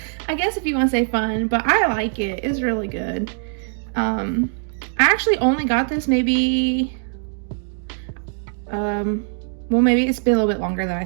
guess if you want to say fun, but I like it. It's really good. I actually only got this maybe, well, maybe it's been a little bit longer than I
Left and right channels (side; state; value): left; silent; digital silence